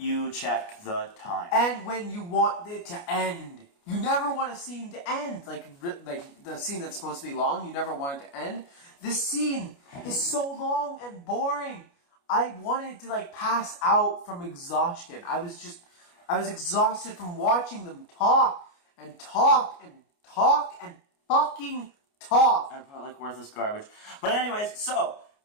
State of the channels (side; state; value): right; late; 29 ms